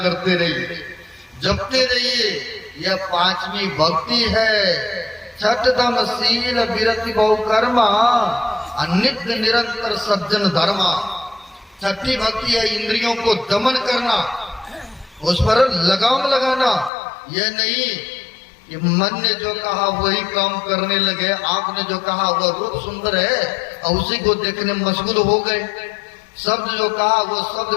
करते रहिए, जपते रहिए। यह पांचवी भक्ति है। छठदम शील विरति बहु कर्मा, नित्य निरंतर सज्जन धर्मा। छठी भक्ति है इंद्रियों को दमन करना, उस पर लगाम लगाना। यह नहीं कि मन ने जो कहा वही काम करने लगे, आंख ने जो कहा वह रूप सुंदर है और उसी को देखने में मशगूल हो गए। शब्द जो कहा वो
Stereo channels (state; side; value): drops out; right; at 16.9 s